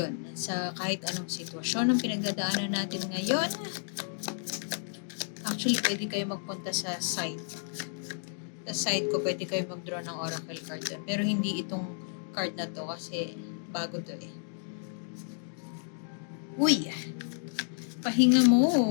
sa kahit anong sitwasyon ang pinagdadaanan natin ngayon. Actually, pwede kayo magpunta sa site. Sa site ko, pwede kayo mag-draw ng oracle card doon. Pero hindi itong card na to kasi bago to eh. Uy! Pahinga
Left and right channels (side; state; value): right; silent; digital silence